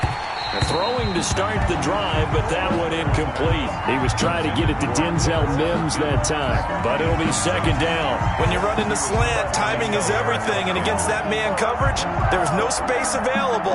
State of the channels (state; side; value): identical; both; correlation 1.00